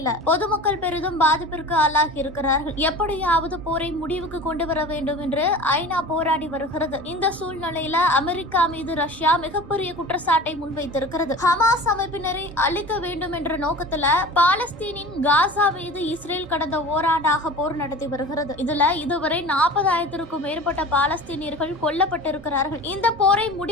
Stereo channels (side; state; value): both; normal; correlation 0.37